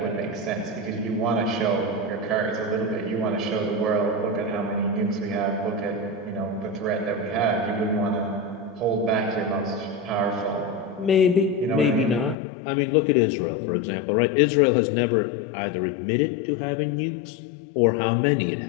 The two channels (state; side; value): drops out; right; at 12.4 s